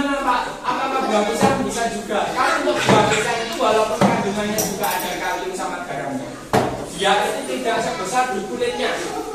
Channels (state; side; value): identical; both; correlation 1.00